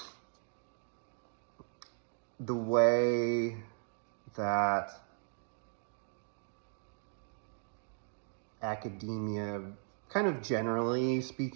the way that academia kind of generally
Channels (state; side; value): silent; left; 53 dB below the other